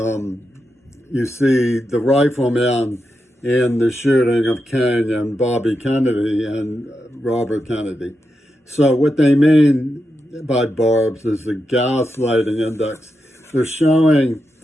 you see the Rifleman in the shooting of King and Bobby Kennedy and Robert Kennedy. So what they mean by barbs is the gaslighting index. They're showing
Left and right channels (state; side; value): normal; both; correlation 0.87